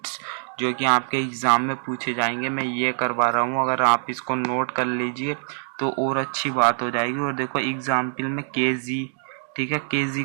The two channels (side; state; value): left; silent; digital silence